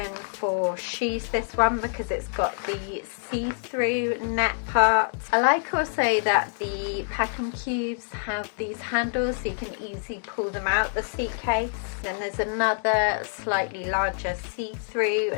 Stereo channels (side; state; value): right; silent; digital silence